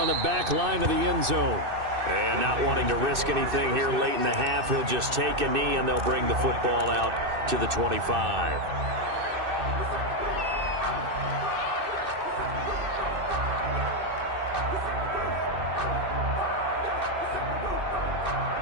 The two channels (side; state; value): left; late; 2.6 ms